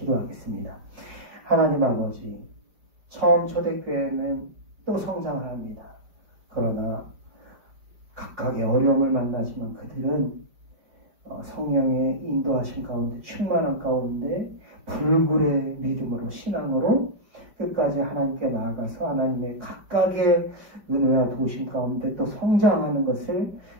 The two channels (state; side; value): late; left; 5.1 ms